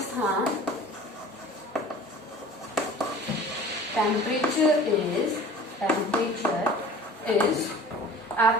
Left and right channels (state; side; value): normal; both; correlation 0.43